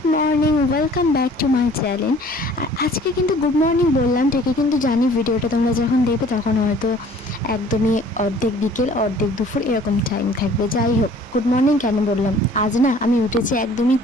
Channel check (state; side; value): normal; both; correlation 0.52